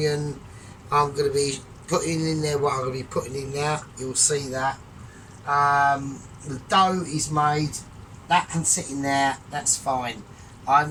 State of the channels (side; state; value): both; identical; correlation 1.00